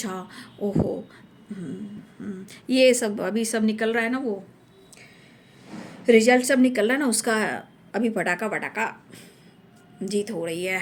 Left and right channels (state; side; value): identical; both; correlation 1.00